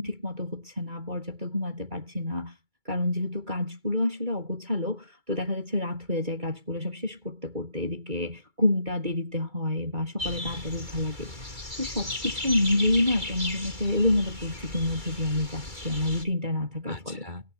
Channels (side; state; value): left; late; 2.3 ms